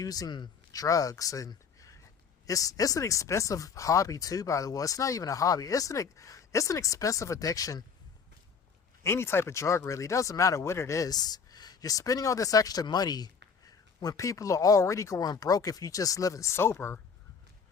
drugs, and it's an expensive hobby too, by the way. It's not even a hobby. It's an expensive addiction. Any type of drug, really. It doesn't matter what it is. You're spending all this extra money when people are already going broke if you just living sober.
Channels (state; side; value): quieter; right; 6.0 dB